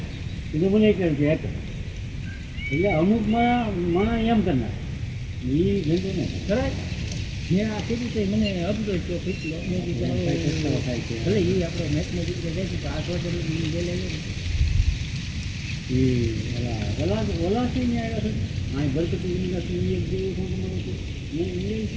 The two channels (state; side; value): identical; both; correlation 1.00